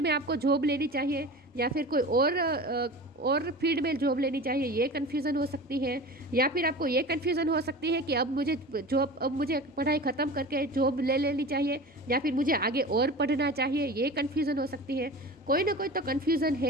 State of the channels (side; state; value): both; normal; correlation 0.34